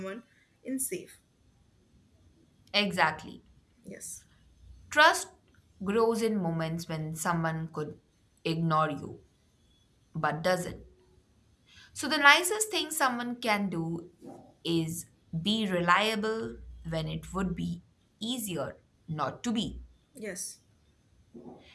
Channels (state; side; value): identical; both; correlation 1.00